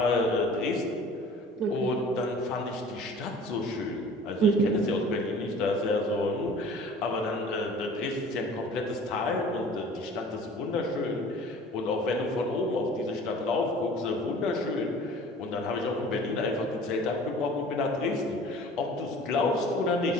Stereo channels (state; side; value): normal; both; correlation 0.46